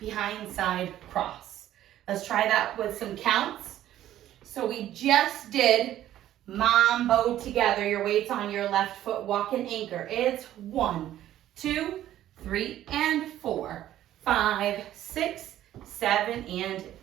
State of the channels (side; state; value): left; quieter; 12.7 dB